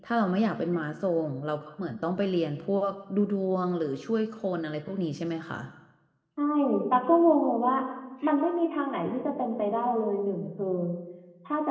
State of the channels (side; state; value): both; identical; correlation 1.00